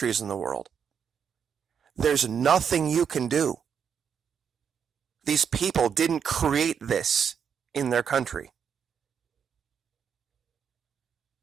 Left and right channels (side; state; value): left; quieter; 7.4 dB